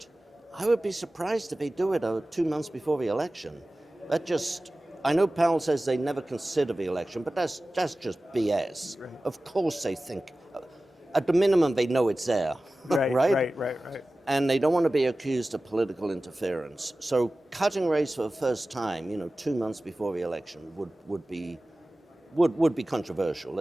I would be surprised if they do it 2 months before the election. I know Powell says they never consider the election, but that's just BS. Right. Of course they think, at the minimum they know it's there, Right. And they don't want to be accused of political interference. So cutting rates for the first time, 2 months before the election would be would be controversial,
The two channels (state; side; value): normal; both; correlation 0.96